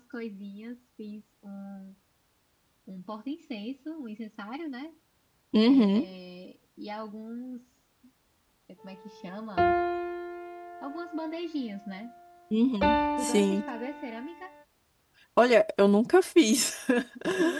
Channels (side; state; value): both; identical; correlation 1.00